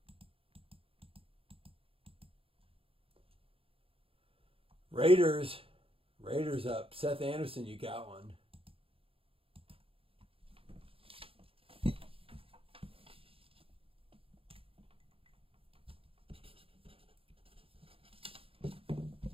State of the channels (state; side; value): late; left; 0.27 ms